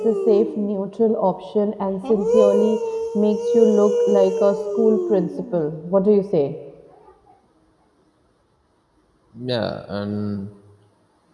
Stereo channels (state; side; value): identical; both; correlation 1.00